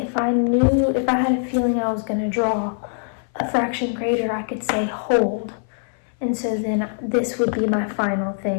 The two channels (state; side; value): silent; right; 59 dB below the other